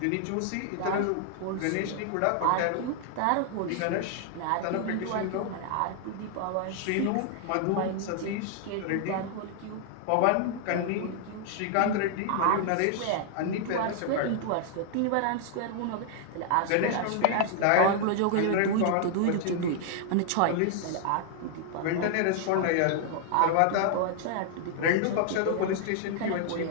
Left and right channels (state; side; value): different; both; correlation 0.00